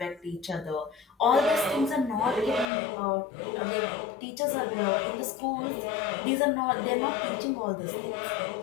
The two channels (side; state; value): right; drops out; at 2.7 s